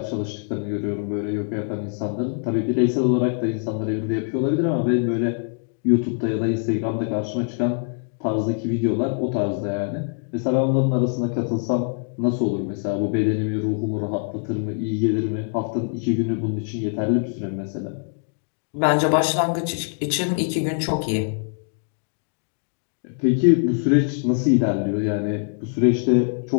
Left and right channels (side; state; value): right; silent; 56 dB below the other